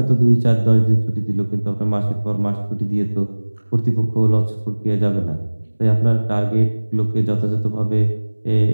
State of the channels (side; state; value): both; inverted; correlation -1.00